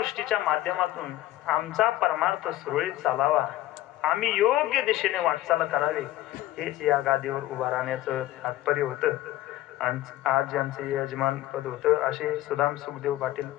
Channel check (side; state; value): right; quieter; 15.4 dB